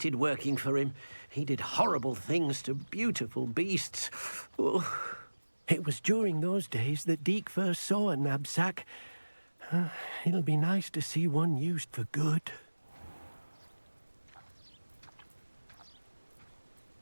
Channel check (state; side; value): inverted; both; correlation -1.00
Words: working for him. He did horrible things to beautiful beasts. Oh. It was during those days that Deke first saw a knapsack. It'll be nice to see one used for good.